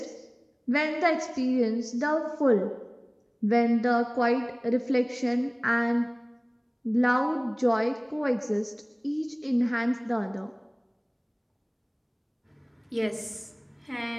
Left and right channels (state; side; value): identical; both; correlation 1.00